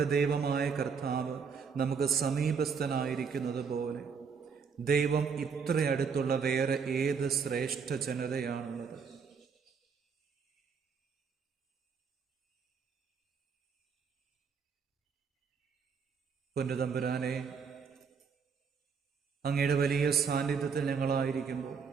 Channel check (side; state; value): left; quieter; 6.0 dB